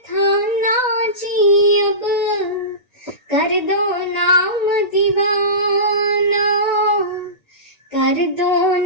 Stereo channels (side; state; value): right; late; 1.9 ms